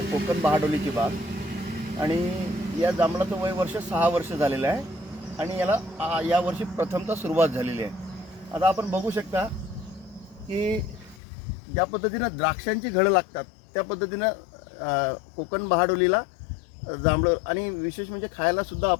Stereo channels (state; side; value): drops out; right; at 11.2 s